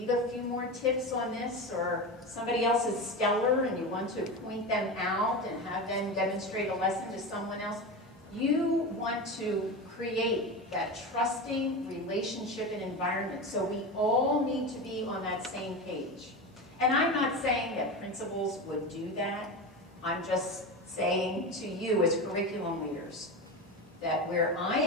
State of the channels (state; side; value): normal; both; correlation 0.23